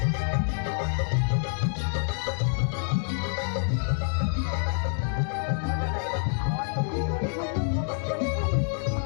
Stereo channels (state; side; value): silent; right; digital silence